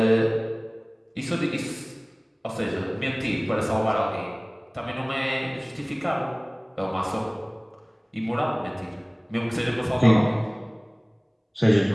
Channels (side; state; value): both; identical; correlation 1.00